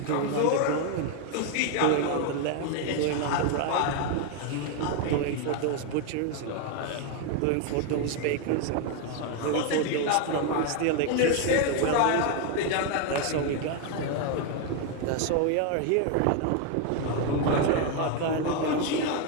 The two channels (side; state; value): both; different; correlation 0.01